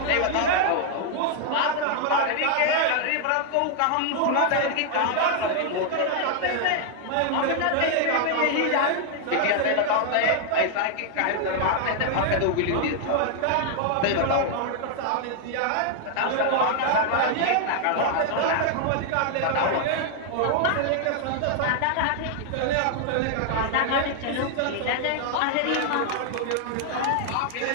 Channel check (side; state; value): both; different; correlation 0.00